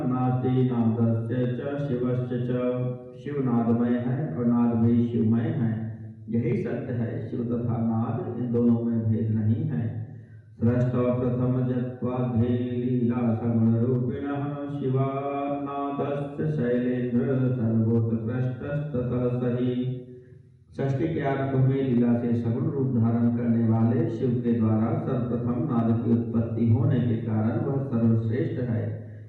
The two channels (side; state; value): both; identical; correlation 1.00